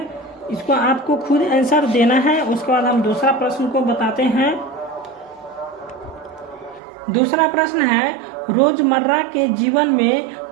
इसको आपको खुद आंसर देना है। उसके बाद हम दूसरा प्रश्न को बताते हैं। दूसरा प्रश्न है, रोजमर्रा के जीवन में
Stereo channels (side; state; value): left; drops out; at 6.8 s